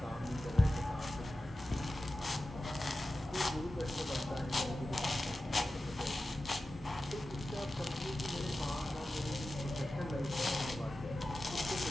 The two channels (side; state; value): both; normal; correlation 0.94